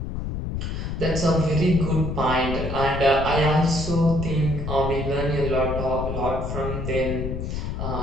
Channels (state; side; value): noise; left; rumble, 4 dB below the sound